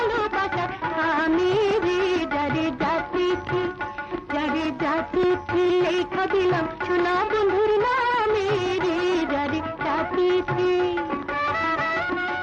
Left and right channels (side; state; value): both; identical; correlation 1.00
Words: আমি রে যারে জাতি লেখা দিলাম সোনা বন্ধুর নামে রে যারে জাতি